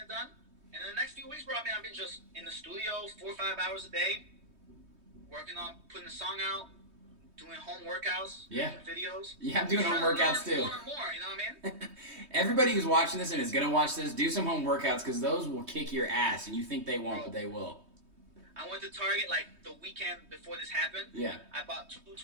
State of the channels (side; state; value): left; late; 3.2 ms